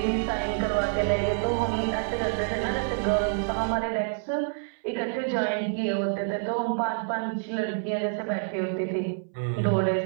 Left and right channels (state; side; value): silent; left; 60 dB below the other